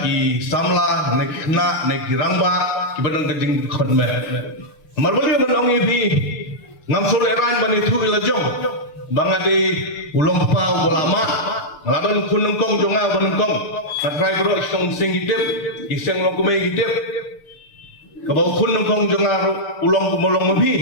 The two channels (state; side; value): late; right; 6.7 ms